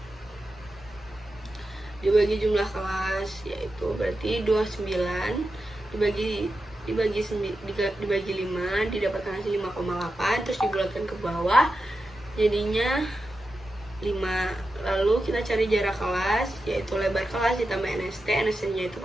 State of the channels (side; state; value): both; normal; correlation 0.90